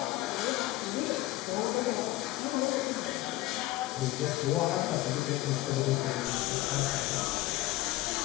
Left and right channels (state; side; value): quieter; right; 17.2 dB